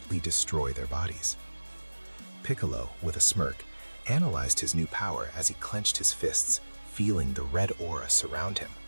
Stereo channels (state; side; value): inverted; both; correlation -1.00